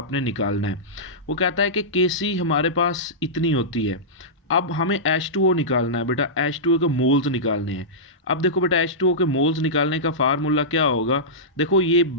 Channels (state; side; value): normal; both; correlation -0.15